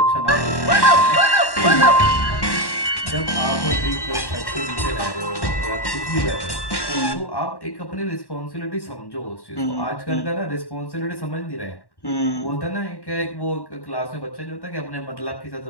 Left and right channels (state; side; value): late; right; 1.1 ms